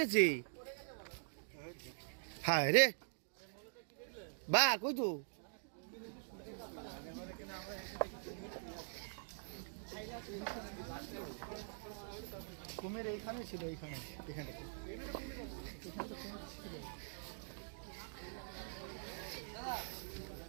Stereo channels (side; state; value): left; silent; digital silence